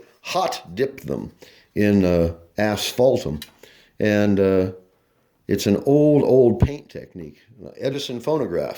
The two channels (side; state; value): both; identical; correlation 1.00